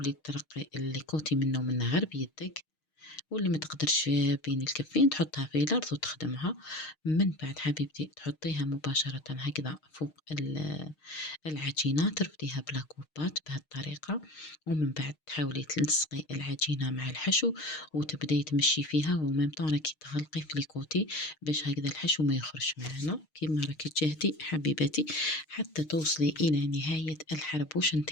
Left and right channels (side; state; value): right; late; 6.5 ms